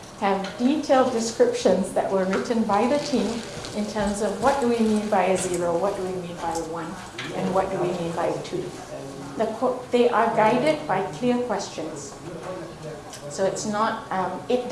have detailed descriptions that were written by the team in terms of what do we mean by a 0, what do we mean by a 1, and what do we mean by a 2. They are guided by clear questions. So it's not, it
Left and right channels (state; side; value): identical; both; correlation 1.00